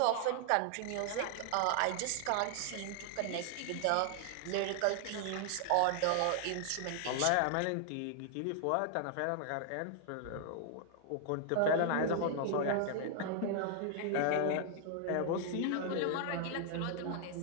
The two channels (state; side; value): different; both; correlation 0.00